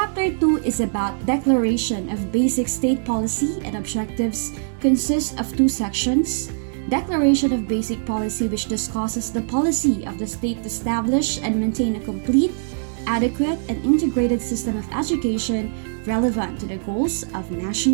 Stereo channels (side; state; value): left; silent; digital silence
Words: 2 is about Declaration of Basic State Policy and Objectives. Consists of 2 sections. Declaration of Basic Policy, which discusses the policy of the state to establish and maintain a complete, adequate, and integrated system of education relevant to the goals of